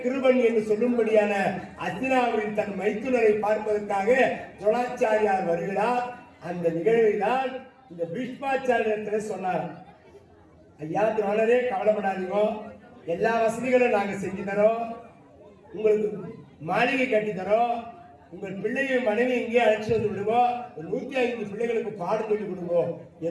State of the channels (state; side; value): identical; both; correlation 1.00